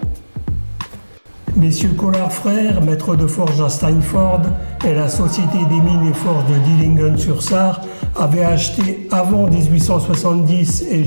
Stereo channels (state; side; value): inverted; both; correlation -1.00